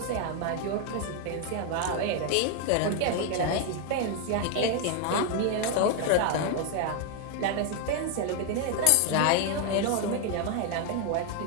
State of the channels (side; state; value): both; different; correlation 0.01